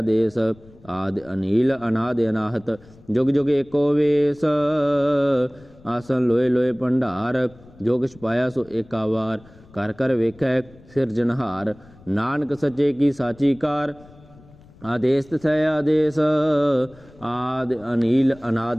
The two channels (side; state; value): left; noise; rumble, 25 dB below the sound